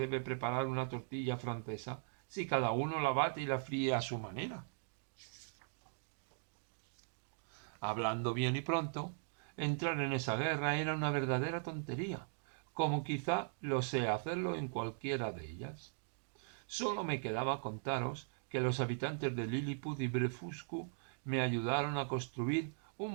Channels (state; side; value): silent; left; digital silence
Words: preparar una tortilla francesa si cada uno la bate y la fríe a su manera? Hablando bien y pronto, entrar en esa guerra era una verdadera tontería, como quizá lo sea hacerlo en cualquiera de ellas. Solo me quedaba contaros que los habitantes de Lilliput y Blefuscu me ayudaron a construir